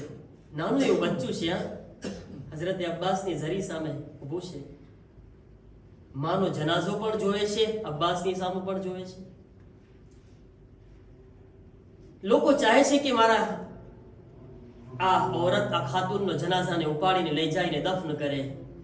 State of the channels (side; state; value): both; identical; correlation 1.00